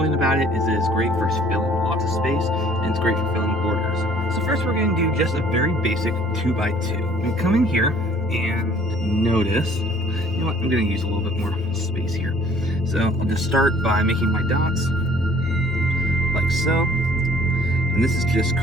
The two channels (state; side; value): normal; both; correlation 0.56